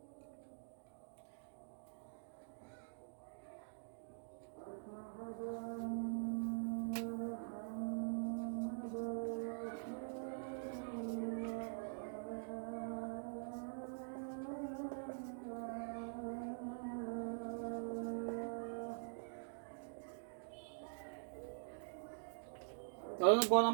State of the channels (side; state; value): left; silent; digital silence